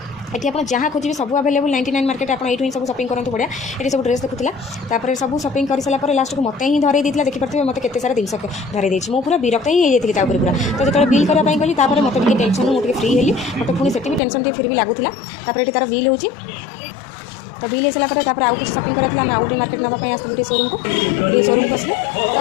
ये आप जहाँ खोजे सब अवेलेबल 99 मार्केट आप ये सब शॉपिंग करते बढ़िया ये सब ड्रेस देखुला सब शॉपिंग कर सारापर लास्ट को मत ही धरई देता देखिए मत के सारा जिन धरई देती मुझे पूरा विरक्त ही होती पूरा तो जो बिल करने गली मत टेंशन मुझे फ्री हेली मत पुणी से टेंशन फिर भी लगुला ये तार बिल हो तो बिल हो सारापर आउ किसी शॉपिंग करा आम आउटे मार्केट नापी आसलु शोरूम को शोरूम को आसलु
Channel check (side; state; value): right; drops out; at 14.2 s